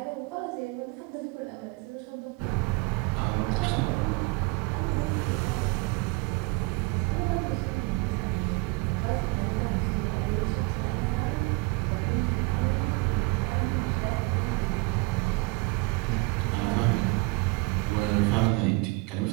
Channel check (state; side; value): quieter; left; 25.8 dB